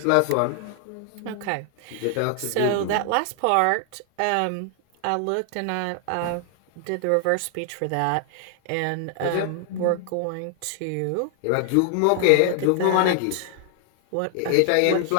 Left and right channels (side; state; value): both; different; correlation 0.00